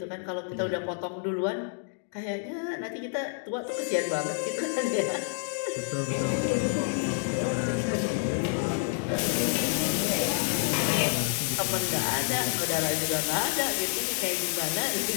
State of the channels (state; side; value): silent; right; digital silence